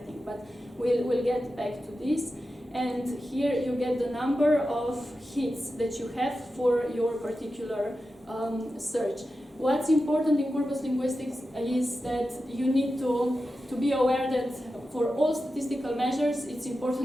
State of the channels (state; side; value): normal; both; correlation 0.91